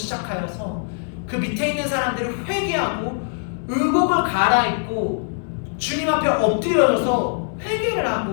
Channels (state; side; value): silent; right; 64 dB below the other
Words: 그 밑에 있는 사람들을 회개하고 의복을 갈아입고 주님 앞에 엎드려져서 회개를